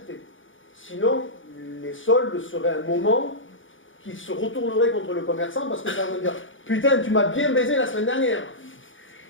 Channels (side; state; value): right; late; 0.57 ms